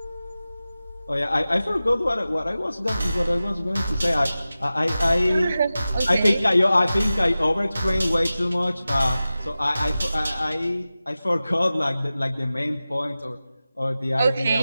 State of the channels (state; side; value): inverted; both; correlation -0.95